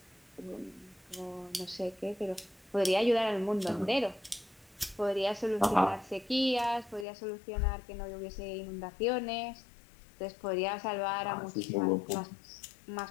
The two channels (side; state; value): right; drops out; at 7.1 s